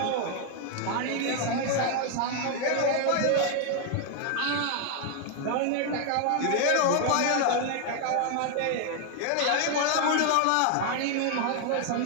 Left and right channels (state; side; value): different; both; correlation 0.00